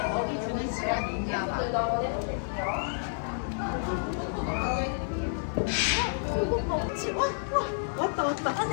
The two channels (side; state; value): right; silent; digital silence